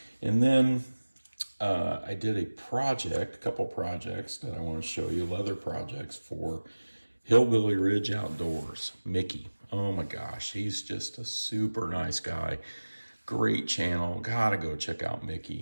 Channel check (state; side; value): inverted; both; correlation -1.00